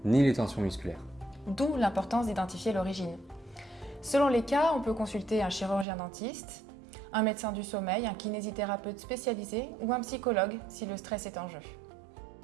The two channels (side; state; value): left; drops out; at 5.9 s